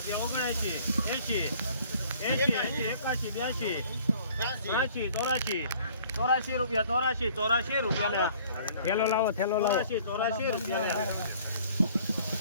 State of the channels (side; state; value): both; inverted; correlation -0.55